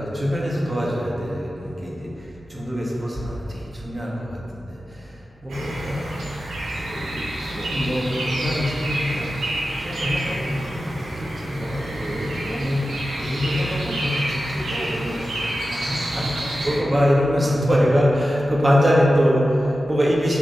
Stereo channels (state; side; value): normal; both; correlation 0.93